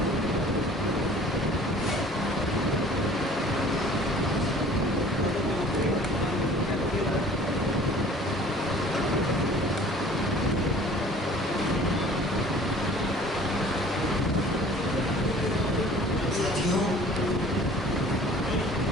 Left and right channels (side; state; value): both; normal; correlation 0.49